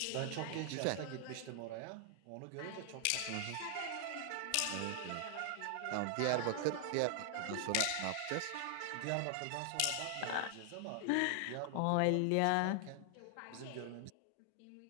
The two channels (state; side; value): different; both; correlation 0.00